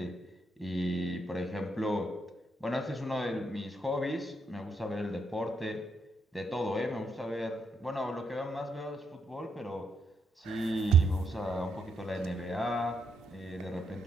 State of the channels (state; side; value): normal; both; correlation 0.78